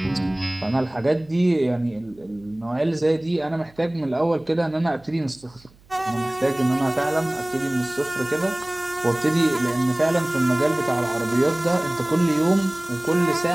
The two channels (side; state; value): right; noise; hum, 28 dB below the sound